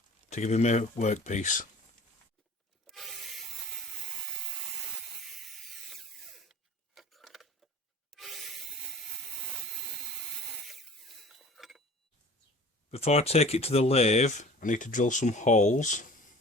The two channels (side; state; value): both; normal; correlation 0.42